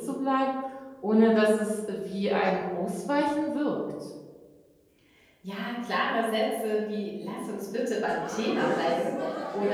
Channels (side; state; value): both; identical; correlation 1.00